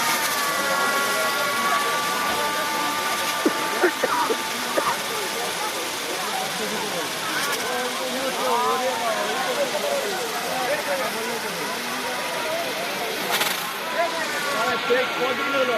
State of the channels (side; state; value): both; identical; correlation 1.00